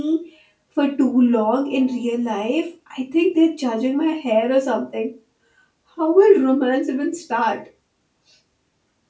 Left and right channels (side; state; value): both; identical; correlation 1.00